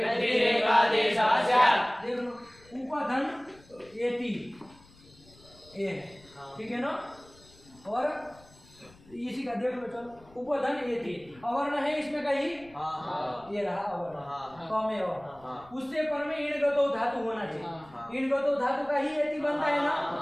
स्यात्। देख लो, उपधन एति ए, ठीक है ना? और इसी का देख लो, चलो उपधन एति अवर्ण है इसमें कहीं, ये रहा अवर्ण कमेव, उससे पर में इणगतो धातु होना चाहिए। इणगतो धातु का ही एति बनता है ना,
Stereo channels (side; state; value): left; noise; rumble, 26 dB below the sound